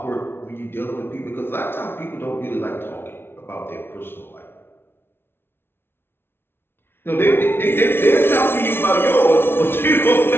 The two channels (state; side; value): late; right; 0.11 ms